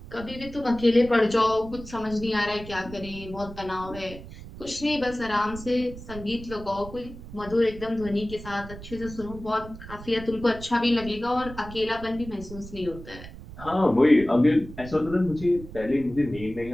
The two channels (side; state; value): right; noise; rumble, 14 dB below the sound